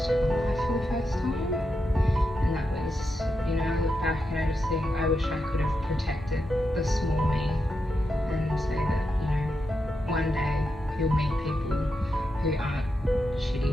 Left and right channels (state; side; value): normal; both; correlation 0.86